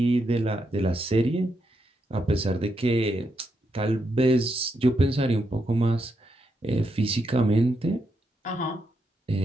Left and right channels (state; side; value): normal; both; correlation 0.81